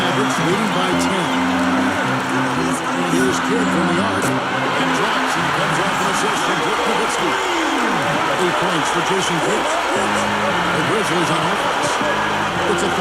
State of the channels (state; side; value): identical; both; correlation 1.00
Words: leading by 10. Here's Kidd from the arc. And drops and comes off an assist from Dirk Nowitzki. 8 points for Jason Kidd. The Grizzlies on offense. It's a